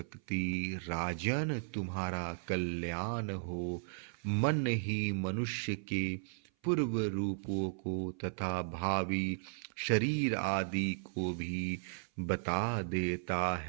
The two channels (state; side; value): silent; left; 54 dB below the other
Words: राजन, तुम्हारा कल्याण हो। मन ही मनुष्य के पूर्व रूपों को तथा भावी शरीर आदि को भी बता देता